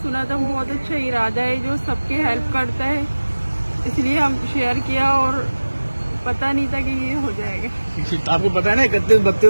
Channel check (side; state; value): both; inverted; correlation -1.00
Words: सुना था, बहुत अच्छा इरादा है जो सबके हेल्प करता है, इसलिए हम शेयर किया और पता नहीं था कि ये हो जाएगा। आपको पता है ना